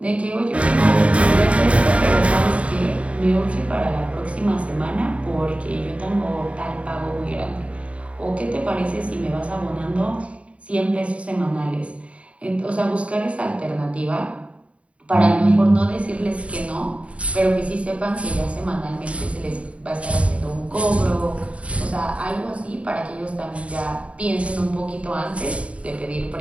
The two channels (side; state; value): left; late; 0.064 ms